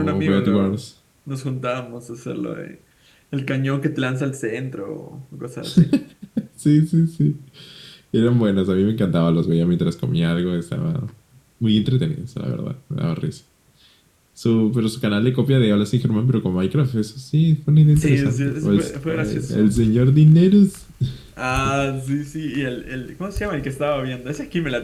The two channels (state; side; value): identical; both; correlation 1.00